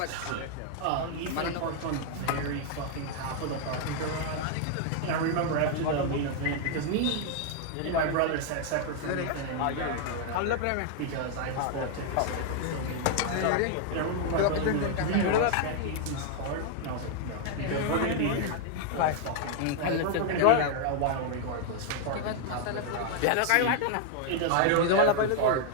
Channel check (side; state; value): both; different; correlation 0.00